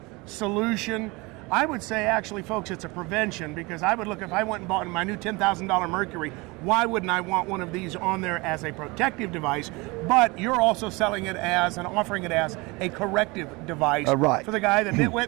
solution. I would say, actually, folks, it's a prevention, because I would look, if I went and bought my new $10,000 Mercury, why wouldn't I want one of these on there as a protective device? But you're also selling it as and offering it as a corrective device right. for the guy, the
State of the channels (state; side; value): quieter; left; 25.1 dB